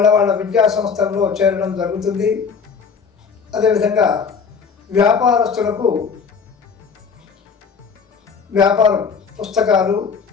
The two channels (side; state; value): right; quieter; 5.8 dB